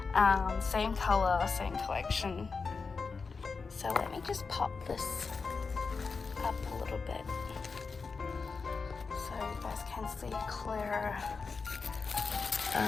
same color, same collection. So let me just pop this up a little bit so you guys can see clearer.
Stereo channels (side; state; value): right; quieter; 4.7 dB